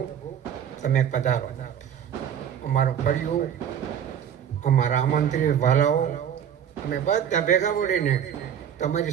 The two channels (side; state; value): left; quieter; 8.9 dB